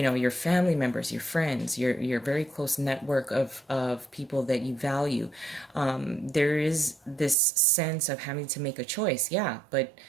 family members, your friends, your very close network of people that you value. There is this sense of having to make a choice, yeah, but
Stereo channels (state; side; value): drops out; left; at 7.4 s